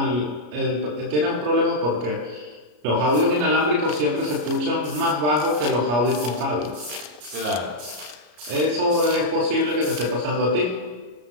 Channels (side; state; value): left; late; 33 ms